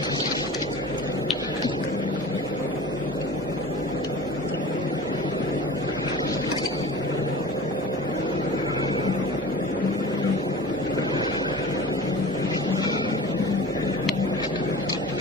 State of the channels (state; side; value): normal; both; correlation 0.38